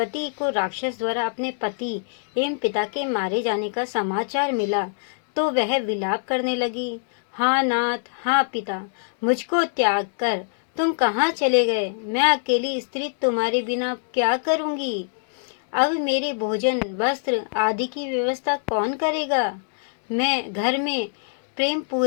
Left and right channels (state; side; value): silent; right; digital silence